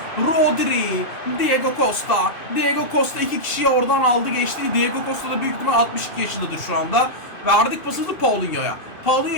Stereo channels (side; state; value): right; late; 2.6 ms